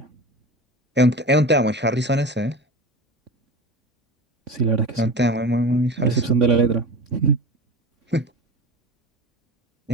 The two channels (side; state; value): both; normal; correlation 0.31